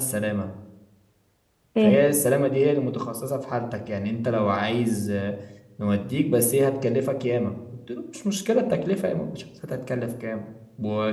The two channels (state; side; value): identical; both; correlation 1.00